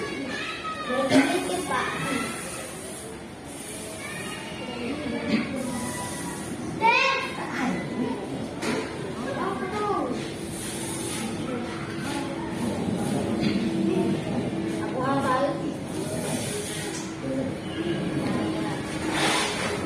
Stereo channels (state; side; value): identical; both; correlation 1.00